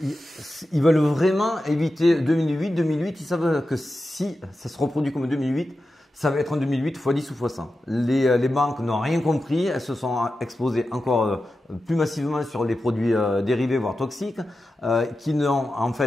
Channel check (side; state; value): both; normal; correlation 0.91